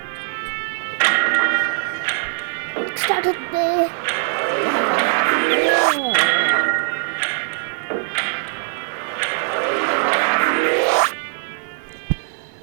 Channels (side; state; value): left; silent; digital silence